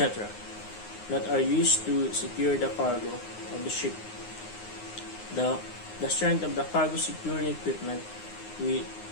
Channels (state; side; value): late; right; 9.6 ms